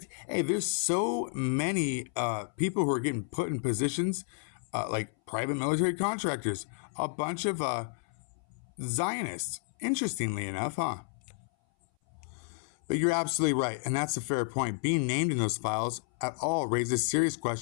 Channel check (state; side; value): silent; right; 57 dB below the other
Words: Hey, there's so many people who are getting put in positions like private military contractors, a bunch of Zionists, interestingly enough, huh? But you're absolutely right, and that's a fair point. Being named in those files at all raises serious